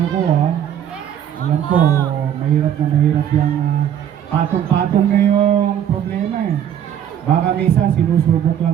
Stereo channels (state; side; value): quieter; left; 9.8 dB